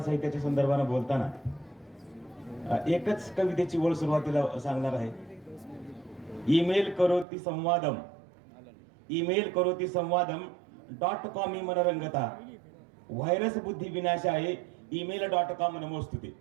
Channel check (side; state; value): left; drops out; at 7.2 s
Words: साहित्याच्या संदर्भानं बोलताना एकच कवितेची ओळ सुरुवातीला सांगणार आहे. ईमेल करोती संवादम .com मनरंगता व्हायरस बुद्धी विनाशाय email.com नमोस्तुते.